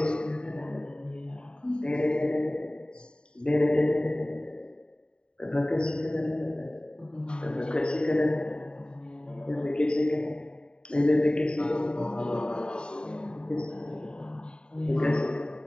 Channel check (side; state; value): right; late; 0.050 ms